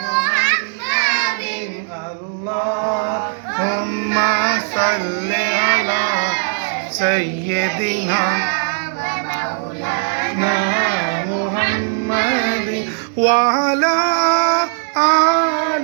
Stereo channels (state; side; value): silent; left; digital silence